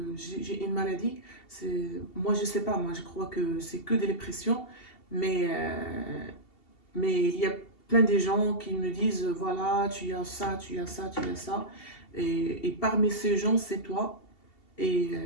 j'ai une maladie. Moi je sais pas, moi je crois que c'est que des dépressions, mais il y a plein de gens qui me disent voilà, tu as ça, tu as ça, tu as ça, et parmi ces gens c'est toi.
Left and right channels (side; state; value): right; late; 2.7 ms